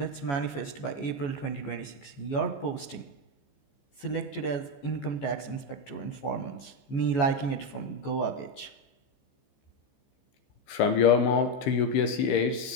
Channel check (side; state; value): right; late; 14 ms